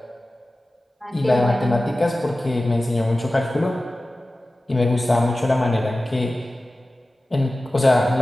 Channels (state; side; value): normal; both; correlation 0.96